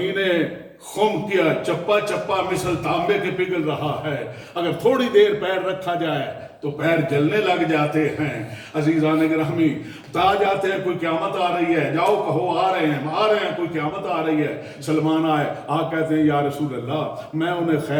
خم کیا چپا چپا مثل تانبے کے پگھل رہا ہے، اگر تھوڑی دیر پیر رکھا جائے تو پیر جلنے لگ جاتے ہیں۔ عزیزان گرامی بتا جاتے ہیں کوئی قیامت آ رہی ہے، جاؤ کہو آ رہے ہیں کوئی قیامت آ رہی ہے۔ سلمان آئے، کہتے ہیں یا رسول اللہ میں انہیں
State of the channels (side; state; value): both; identical; correlation 1.00